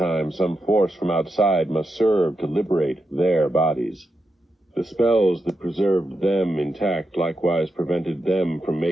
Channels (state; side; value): normal; both; correlation 0.87